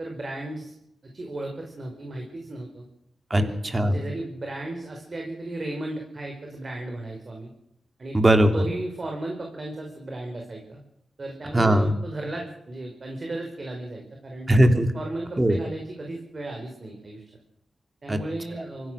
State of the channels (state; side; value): normal; both; correlation 0.92